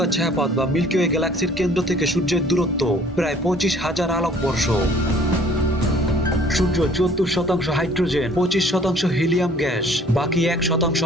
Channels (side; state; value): both; normal; correlation 0.55